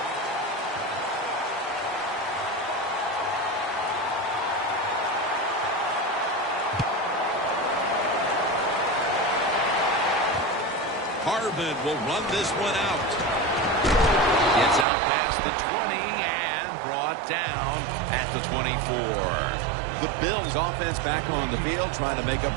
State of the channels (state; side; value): drops out; left; at 14.9 s